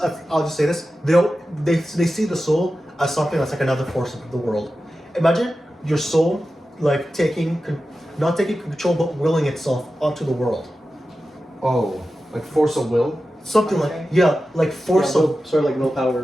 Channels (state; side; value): normal; both; correlation 0.93